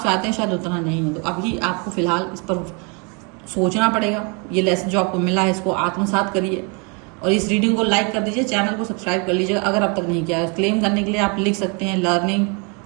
चाहते हैं शायद उतना नहीं है। तो अभी आपको फिलहाल इस पर सोचना पड़ेगा। ये लेसन जो आपको मिला है इसको आत्मसात करिए, और इस रीडिंग को लाइक कर दीजिए, चैनल को सब्सक्राइब कर लीजिएगा अगर अब तक नहीं किया है। क्लेम करने के लिए आप लिख सकते हैं learning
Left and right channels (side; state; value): left; quieter; 33.4 dB